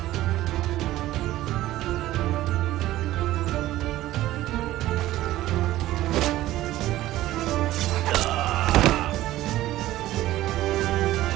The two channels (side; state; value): left; quieter; 15.3 dB